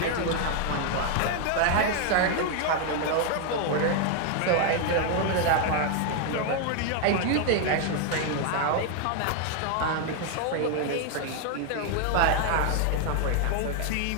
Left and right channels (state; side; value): different; both; correlation 0.00